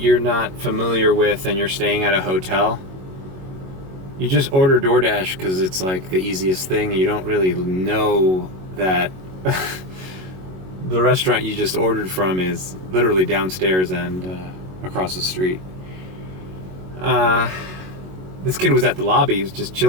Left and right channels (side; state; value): left; late; 21 ms